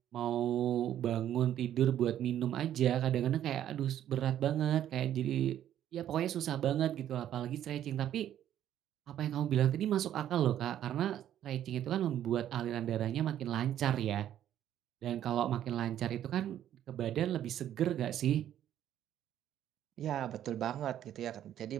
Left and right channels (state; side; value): quieter; left; 11.1 dB